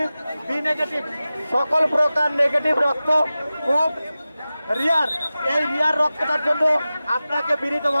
B negative, সকল প্রকার নেগেটিভ রক্ত খুব রিয়ার। এই রিয়ার রক্তটার জন্য আপনাকে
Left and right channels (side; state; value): both; inverted; correlation -0.96